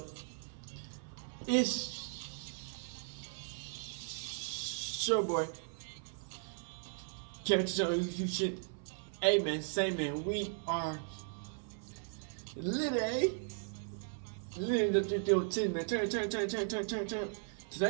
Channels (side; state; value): left; silent; 53 dB below the other